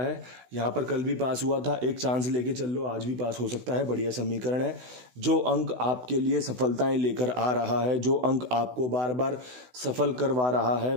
यहाँ पर कल भी पास हुआ था, एक चांस लेके चल लो, आज भी पास हो सकता है। बढ़िया समीकरण है। जो अंक आपके लिए सफलताएं लेकर आ रहा है, जो अंक आपको बार बार सफल करवा रहा है,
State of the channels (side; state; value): left; late; 16 ms